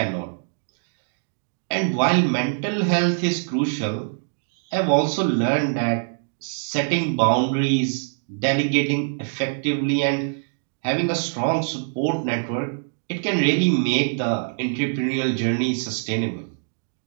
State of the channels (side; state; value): left; silent; digital silence